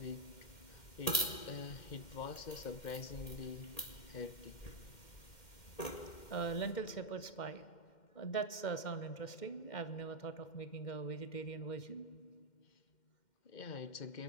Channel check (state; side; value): late; right; 2.1 ms